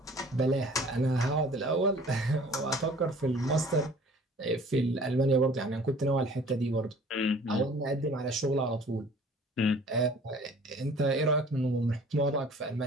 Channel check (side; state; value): both; normal; correlation 0.50